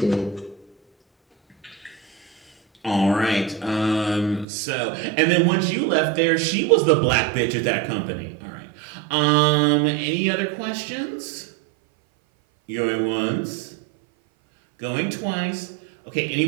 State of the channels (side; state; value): left; drops out; at 4.5 s